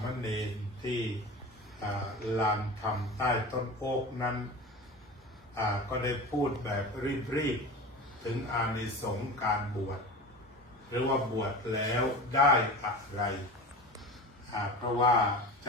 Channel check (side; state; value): both; normal; correlation 0.33